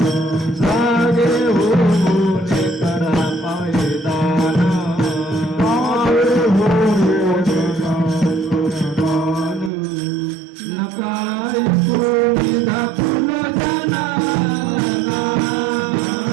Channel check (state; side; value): drops out; left; at 9.7 s